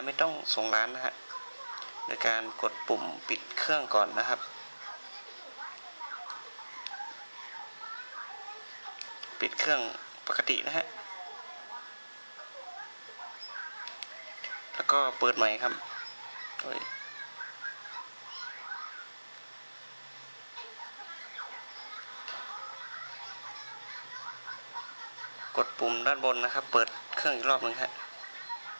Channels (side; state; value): both; inverted; correlation -1.00